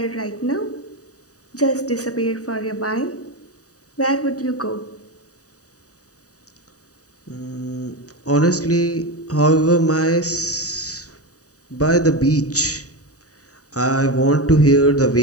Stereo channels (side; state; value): right; late; 0.66 ms